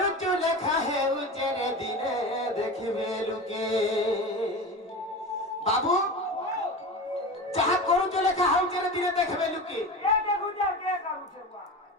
लिखा है उचेरे दिने देखिबे लुके बाबू जहाँ करुचु लिखा है उचेरे दिने देखिबे लुके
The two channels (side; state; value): both; normal; correlation 0.28